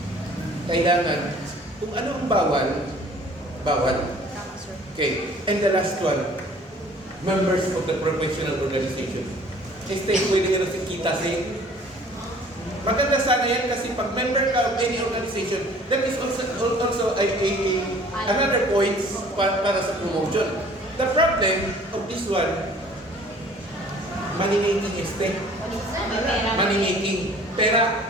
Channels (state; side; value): normal; both; correlation 0.52